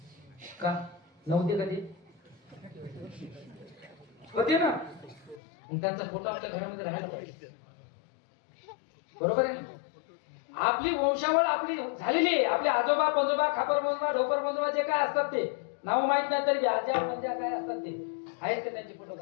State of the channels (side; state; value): right; drops out; at 5.4 s